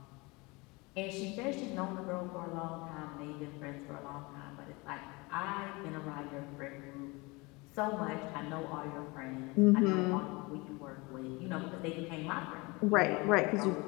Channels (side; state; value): right; quieter; 25.4 dB